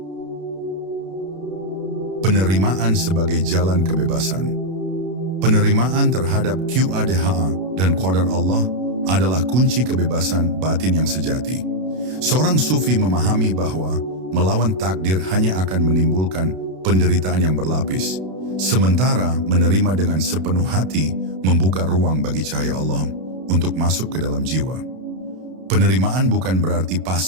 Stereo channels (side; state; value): left; late; 32 ms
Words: Penerimaan sebagai jalan kebebasan. Penerimaan terhadap Qadha dan Qadar Allah adalah kunci kebebasan batin yang sejati. Seorang sufi memahami bahwa melawan takdir hanya akan menimbulkan penderitaan yang berlapis, sementara menerima dengan sepenuh hati membuka ruang bagi cahaya Allah untuk masuk ke dalam jiwa. Penerimaan bukan berarti